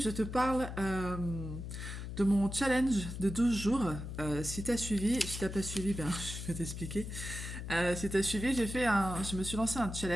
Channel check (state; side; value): noise; left; hum, 7 dB below the sound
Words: te parle de mon challenge de 12 jours. Si tu as suivi, si tu n'as pas suivi, ben, je vais t'expliquer. Si tu as suivi, je me suis lancé un